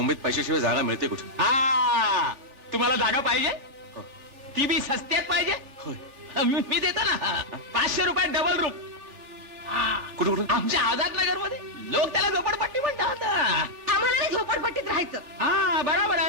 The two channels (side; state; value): left; late; 3.4 ms